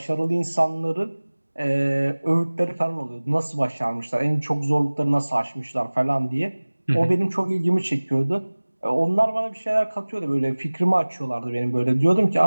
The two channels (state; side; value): inverted; both; correlation -1.00